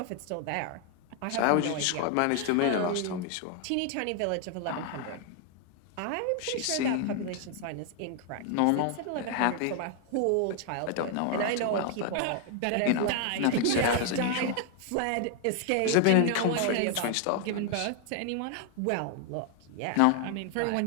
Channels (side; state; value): both; different; correlation 0.00